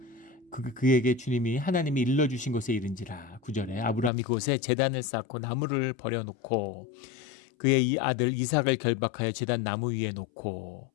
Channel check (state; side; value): drops out; right; at 4.1 s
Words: 그에게 주님이 하나님이 일러주신 곳에 이른지라. 9절에 아브라함이 그곳에 제단을 쌓고 나무를 버려놓고 그의 이 아들 이삭을 결박하여 제단 나무 위에 놓고